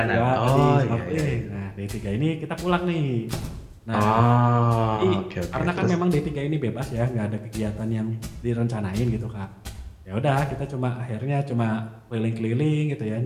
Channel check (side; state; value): both; identical; correlation 1.00